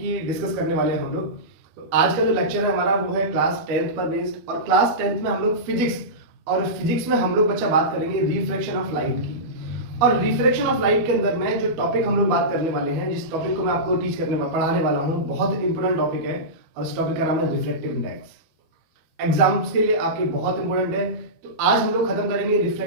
डिस्कस करने वाले हैं हम लोग। तो आज का जो लेक्चर है हमारा वो है क्लास 10th पर बेस्ड। और क्लास 10th में हम लोग फिजिक्स में हम लोग बच्चा बात करेंगे रिफ्रैक्शन ऑफ लाइट की। और रिफ्रैक्शन ऑफ लाइट के अंदर में जो टॉपिक हम लोग बात करने वाले हैं, जिस टॉपिक को मैं आपको पढ़ाने वाला हूँ, बहुत इंपॉर्टेंट टॉपिक है और उस टॉपिक का नाम है रिफ्रैक्टिव इंडेक्स। एग्जाम्स के लिए आपके बहुत इंपॉर्टेंट है। तो आज हम लोग खत्म करेंगे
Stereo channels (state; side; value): late; left; 12 ms